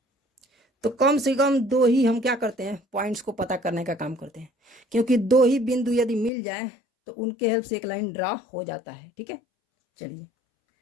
तो कम से कम 2 ही हम क्या करते हैं, पॉइंट्स को पता करने का काम करते हैं, क्योंकि 2 ही बिंदु यदि मिल जाए तो उनके हेल्प से एक लाइन ड्रा हो जाता है। ठीक है, चलिए,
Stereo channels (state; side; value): drops out; right; at 6.3 s